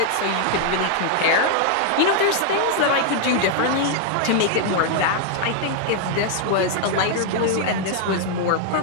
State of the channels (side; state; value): both; different; correlation 0.00